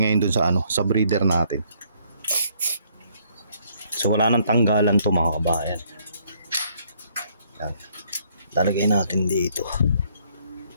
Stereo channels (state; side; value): inverted; both; correlation -0.67